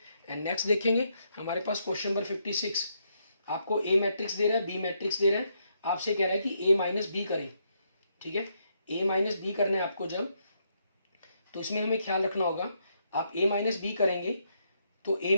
एंड नेक्स्ट देखेंगे हमारे पास क्वेश्चन नंबर 56, आपको ए मैट्रिक्स दे रहा है, बी मैट्रिक्स दे रहा है, आपसे कह रहा है कि ए माइनस बी करें, ठीक है। ए माइनस बी करना है आपको जब, तो इसमें हमें ख्याल रखना होगा, आप ए माइनस बी करेंगे तो ए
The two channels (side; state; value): both; inverted; correlation -0.76